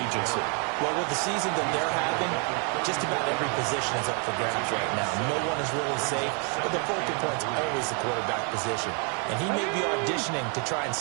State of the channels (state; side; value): quieter; left; 37.7 dB